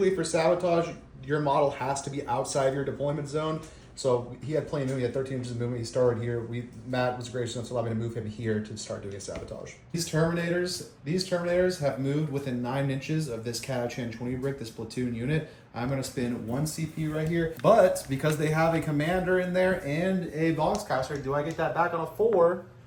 for sabotage, your model has to be outside your deployment zone. So he had plenty of movement. He had 13 inches of movement. He started here. Matt was gracious enough to allow me to move him here to start doing a sabotage. These Terminators have moved within 9 inches of this Catachan 20 brick, this platoon unit. I'm going to spin 1 CP right here. But because they have a commander in there and a boxcaster, do I get that back on a 4?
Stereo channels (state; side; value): identical; both; correlation 1.00